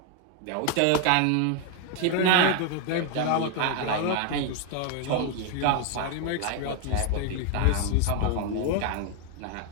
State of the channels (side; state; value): both; different; correlation 0.01